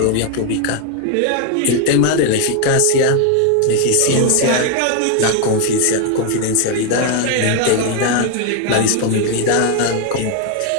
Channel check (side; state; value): both; different; correlation 0.01